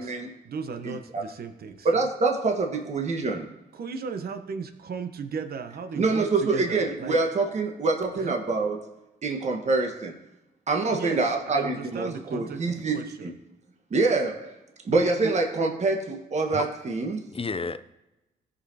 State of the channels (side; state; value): left; quieter; 3.1 dB